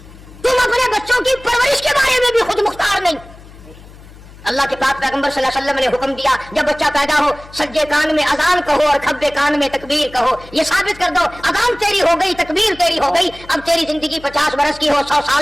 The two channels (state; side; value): noise; left; hum, 20 dB below the sound